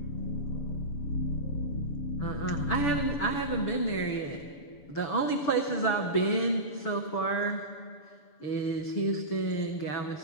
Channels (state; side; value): late; right; 6.9 ms